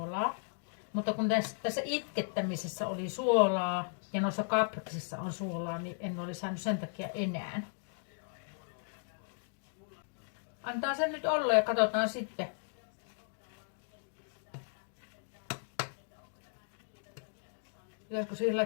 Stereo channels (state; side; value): silent; right; digital silence